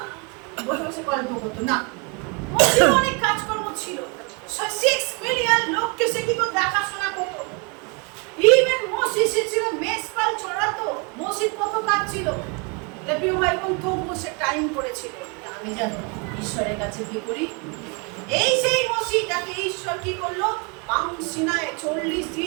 বসে বসে গল্প করতো, না, মসির অনেক কাজকর্ম ছিল। 6 মিলিয়ন লোককে সে কি করে দেখাশোনা করতো। ইভেন মসি সে ছিল মেষপাল চড়াতো। মসির কত কাজ ছিল। প্রিয় ভাই বোন, তবুও সে টাইম করেছিল আমি জানো ঈশ্বরের কাছে কি করি। এই সেই মসি যাকে ঈশ্বর কি করলো, সিনায় 40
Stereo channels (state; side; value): quieter; left; 31.9 dB